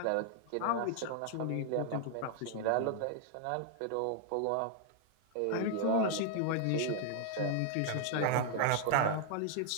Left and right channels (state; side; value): different; both; correlation 0.00